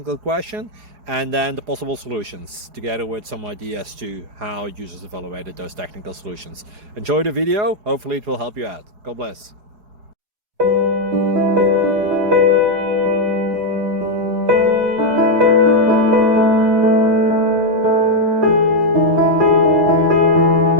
question and then the possible solutions, together with some ideas to how users evaluated those technical solutions. Enjoy the video, hopefully it will help you out. God bless.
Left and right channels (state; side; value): late; left; 4.8 ms